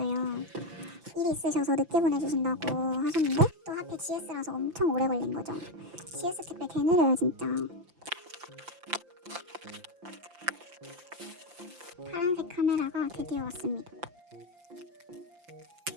일이 있으셔서 늦게 보내주신다고 하셨는데 또 하필 GS라서 엄청 오래 걸린 거죠. GS 택배 개 느려요 진짜. 파란색 카메라가 드디어 왔습니다.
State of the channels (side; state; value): left; late; 5.8 ms